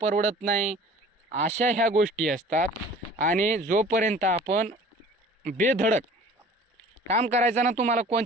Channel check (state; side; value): normal; both; correlation 0.46